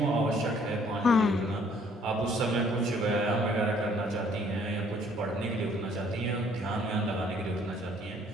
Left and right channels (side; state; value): both; normal; correlation 0.62